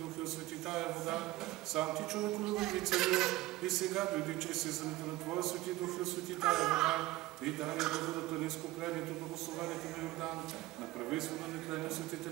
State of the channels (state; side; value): quieter; left; 18.0 dB